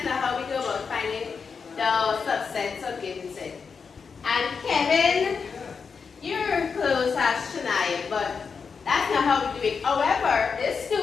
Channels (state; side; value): quieter; right; 5.6 dB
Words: not how we go about finding the subsets of given set. And Kevin, you're close as Shania, but that's not how we do it. However, this